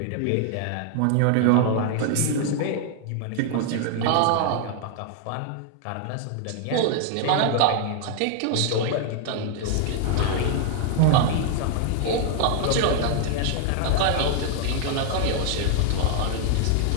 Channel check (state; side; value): different; both; correlation 0.00